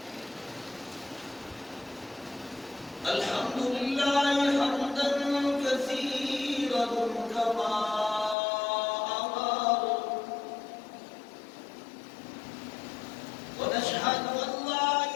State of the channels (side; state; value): right; drops out; at 8.3 s